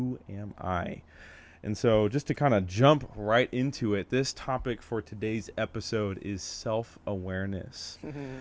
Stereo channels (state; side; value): identical; both; correlation 1.00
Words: am I? And so just to kind of jump right into it, this topic for today's episode is self-awareness.